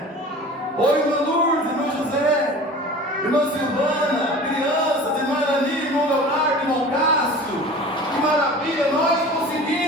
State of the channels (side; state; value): both; normal; correlation 0.40